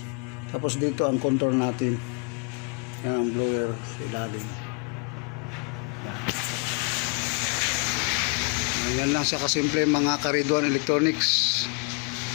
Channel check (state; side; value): quieter; right; 35.0 dB